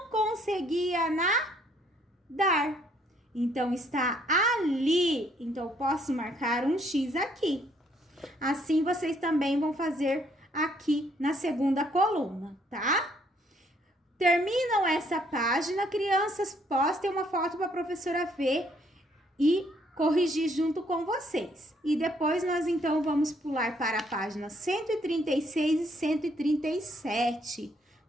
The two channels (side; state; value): both; normal; correlation 0.67